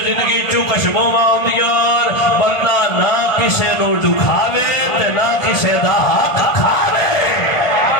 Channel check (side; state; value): right; late; 1.4 ms